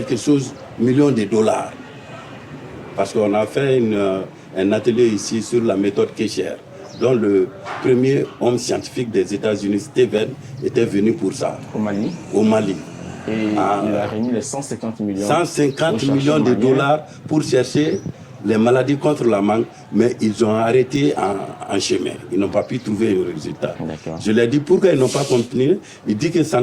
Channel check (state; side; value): identical; both; correlation 1.00